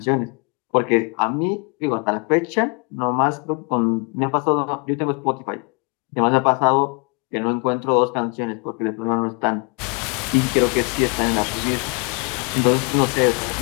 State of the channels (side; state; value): right; quieter; 34.4 dB